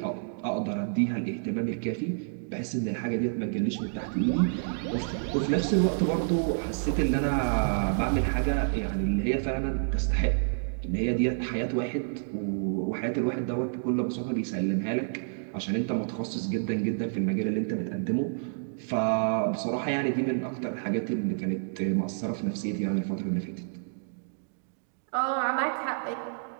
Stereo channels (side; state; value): left; silent; digital silence